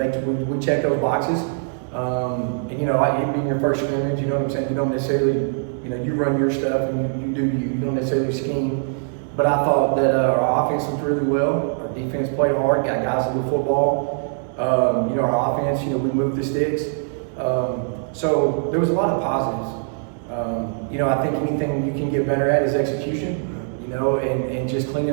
we check those boxes. And it being your first scrimmage, you know what I'm saying? You don't necessarily, you run your stuff and you do you. You don't necessarily scheme. But I thought that our offense was really well. Our defense played hard, got guys to do football. Our offense, we moved the sticks. So there was a lot of positives. I think anything you can get better at is execution, and just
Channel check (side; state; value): left; silent; digital silence